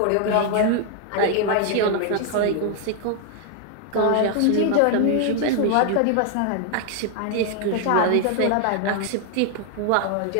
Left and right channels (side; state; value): both; different; correlation 0.00